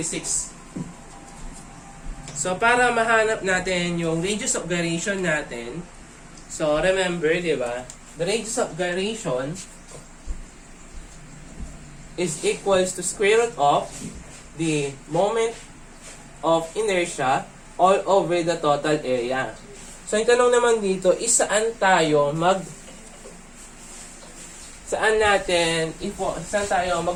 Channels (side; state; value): both; identical; correlation 1.00